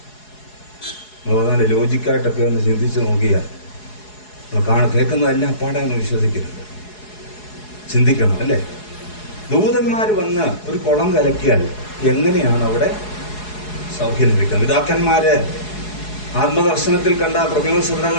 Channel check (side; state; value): right; late; 4.7 ms